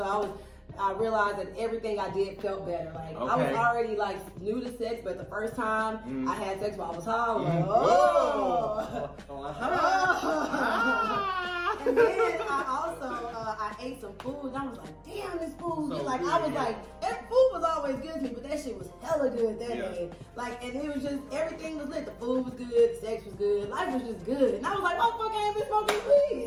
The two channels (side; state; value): both; identical; correlation 1.00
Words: I realized that everything I did felt better. Like I was already like new to sex, but the first time I had sex while I was high, I was like, And then I also I ate some food and I was like, damn, this food. I was like, that food was always good to me, but that shit was hella good that day. Like, and it was just everything was lit. The food was good, the sex was good, life was just good. And I was like, oh fuck, I ain't been smoking weed.